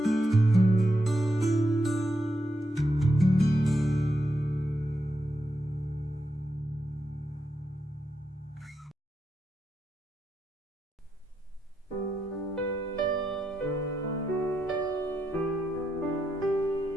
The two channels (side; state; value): both; normal; correlation 0.83